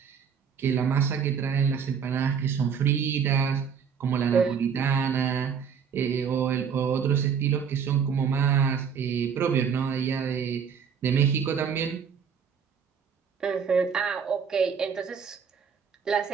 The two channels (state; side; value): quieter; left; 6.9 dB